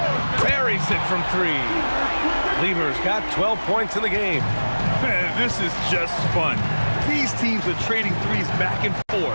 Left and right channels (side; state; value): both; inverted; correlation -1.00